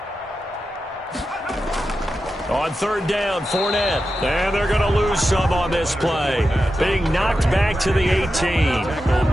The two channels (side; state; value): both; normal; correlation 0.90